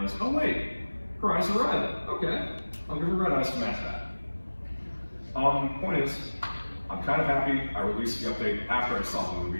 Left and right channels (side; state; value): both; inverted; correlation -1.00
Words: oh wait, her eyes are red. Okay, I'll give her red eyes to match that. Point is, I'm kind of happy I released the update after I saw the